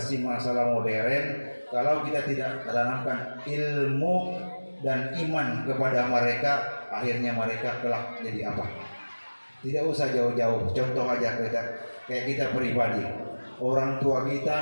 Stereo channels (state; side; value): inverted; both; correlation -1.00